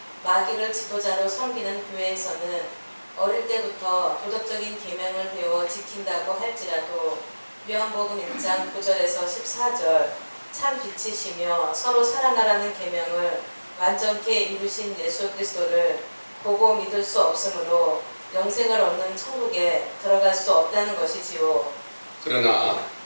마귀를 지도자로 섬기는 교회에서는 어릴 때부터 도덕적인 계명을 배워 지킨다고 할지라도 요한복음 1장 9절에서 14절 참 빛이시며 서로 사랑하라는 계명을 완전케 이루신 예수 그리스도를 보고 믿을 수 없으므로 영생을 얻는 천국에 들어갈 수 없다는 것이지요. 그러나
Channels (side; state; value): both; inverted; correlation -1.00